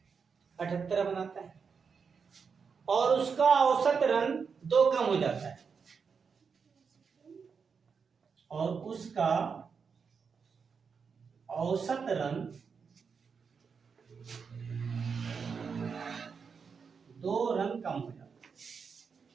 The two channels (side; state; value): left; quieter; 5.8 dB